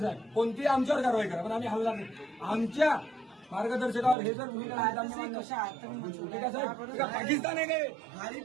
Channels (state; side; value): drops out; left; at 4.2 s